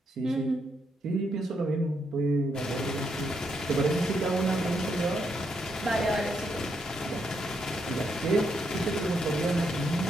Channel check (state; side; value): normal; both; correlation 0.78